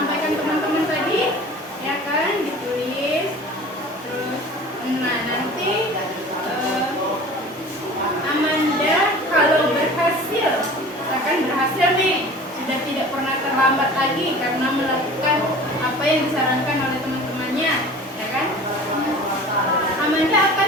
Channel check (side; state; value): both; normal; correlation 0.41